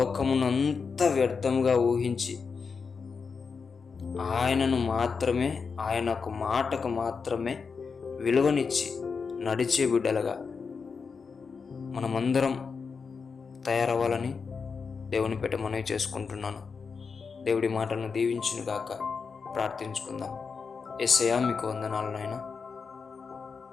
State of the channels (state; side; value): quieter; right; 5.4 dB